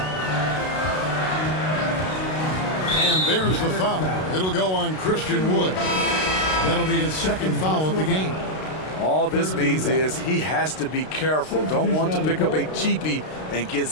And there's the foul. It'll go on Christian Wood. That'll be his second foul of the game. All this means is he has to be careful. Don't want to pick up a cheapie and get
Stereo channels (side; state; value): right; late; 32 ms